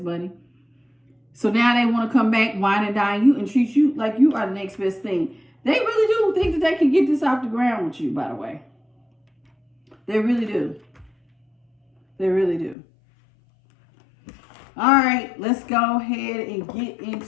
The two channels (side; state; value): right; drops out; at 12.8 s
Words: money. So now they want to come back, wine and dine you, and treat you like you are the next best thing. They really do think that they can get this off the ground with you, by the way. They really do. They really do. All right, let's go ahead and get